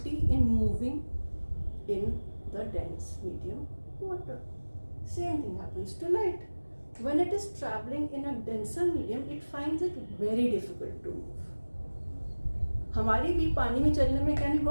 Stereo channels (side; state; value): both; inverted; correlation -1.00